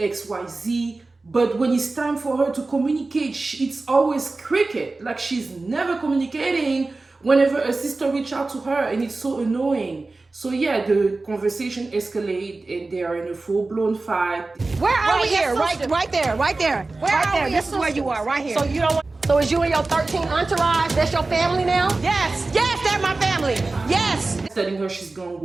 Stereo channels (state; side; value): quieter; left; 3.4 dB